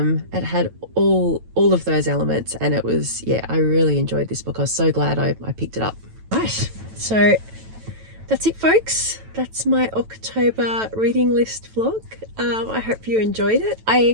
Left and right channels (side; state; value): left; late; 9.1 ms